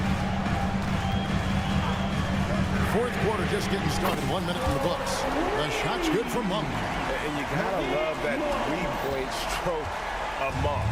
Fourth quarter just getting started. 1 minute in the books. The shot's good from Monk. And you gotta love that three-point stroke of Monk.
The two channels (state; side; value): identical; both; correlation 1.00